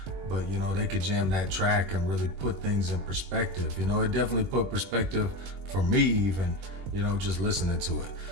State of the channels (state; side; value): late; left; 21 ms